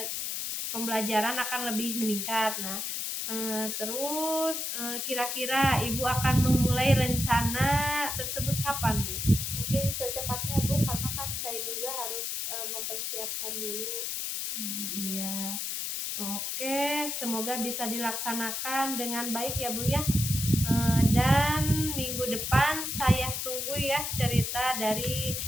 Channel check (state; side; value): noise; left; hiss, 2 dB below the sound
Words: pembelajaran akan lebih meningkat. Nah terus kira-kira Ibu akan memulai rencana tersebut kapan Bu? Mungkin secepatnya Bu, karena kan saya juga harus mempersiapkan dulu. Iya. Oke, semoga bisa dilaksanakan dengan baik ya Bu ya. Dan minggu depan saya tunggu ya cerita dari